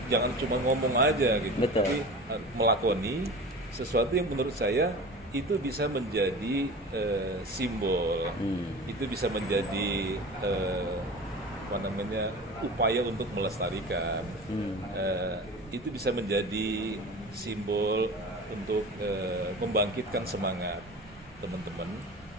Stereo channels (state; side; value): normal; both; correlation 0.35